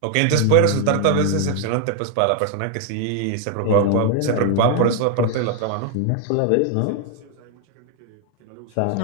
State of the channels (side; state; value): both; different; correlation 0.00